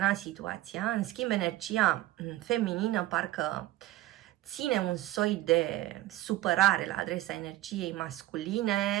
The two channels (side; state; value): left; quieter; 15.9 dB